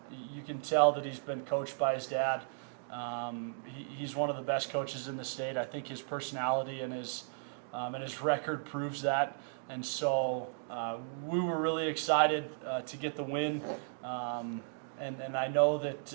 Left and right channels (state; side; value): silent; left; digital silence